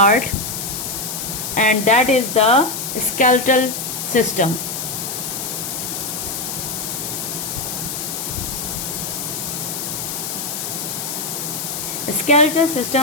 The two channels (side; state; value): left; noise; hiss, 4 dB below the sound